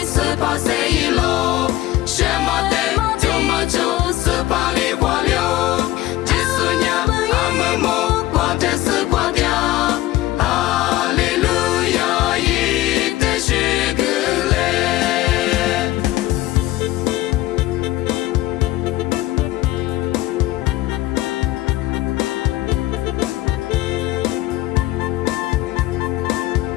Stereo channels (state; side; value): quieter; right; 16.3 dB